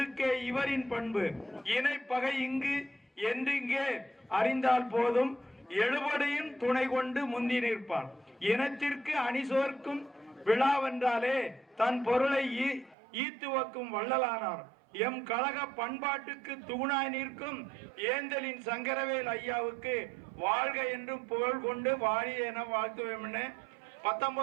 இவரின் பண்பு, இணை பகை இங்கு என்றிங்கே அறிந்தால் போதும், எழுபடையும் துணை கொண்டு முந்தி நிற்பார், இனத்திற்கு அணிசோர்க்கும் விழாவென்றாலே தன் பொருளை ஈத்துவக்கும் வள்ளலானார், எம் கழக பண்பாட்டுக்கு தூணாய் நிற்கும் ஏந்தலின் சங்கரவேல் ஐயாவுக்கு வாழ்க என்றும் புகழ் கொண்டு வாழி என வாழ்த்துவேன்னு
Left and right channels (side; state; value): left; drops out; at 13.0 s